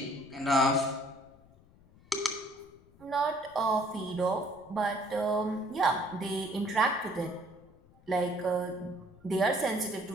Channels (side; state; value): left; noise; rumble, 26 dB below the sound